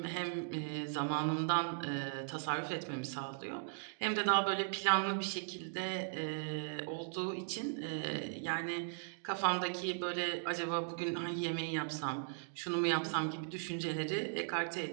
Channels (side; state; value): left; silent; digital silence